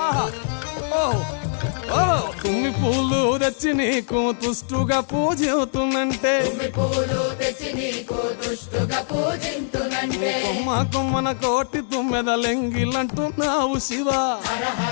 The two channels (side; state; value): right; silent; 64 dB below the other